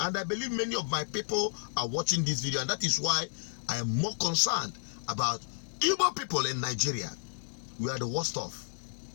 I believe many of my people are watching this video, and that is why I am more concerned about Igbo people in Nigeria. We are the worst off.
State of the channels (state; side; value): silent; right; digital silence